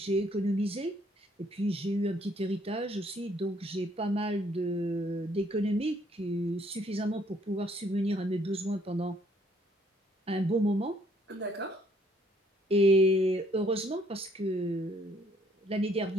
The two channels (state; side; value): normal; both; correlation 0.65